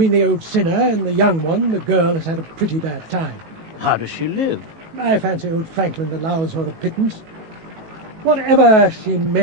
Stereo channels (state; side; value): late; left; 18 ms